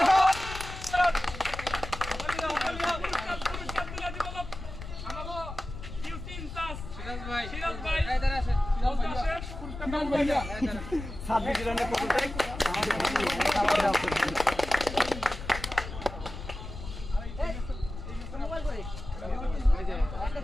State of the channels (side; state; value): left; noise; rumble, 10 dB below the sound